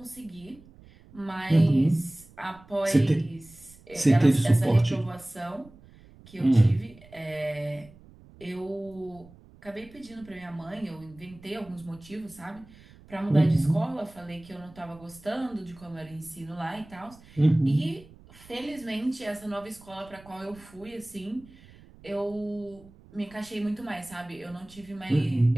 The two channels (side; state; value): right; noise; rumble, 23 dB below the sound